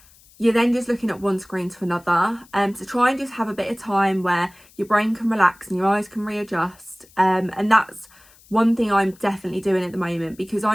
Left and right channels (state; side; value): noise; left; hiss, 27 dB below the sound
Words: you're then just looking at one screen to another. So try and just have a bit of time where your brain can relax and your eyes can readjust. And that's one thing I'm definitely doing at the moment, because